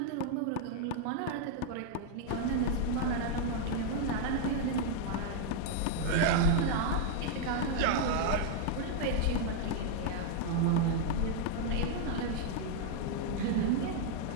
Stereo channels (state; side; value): different; both; correlation 0.00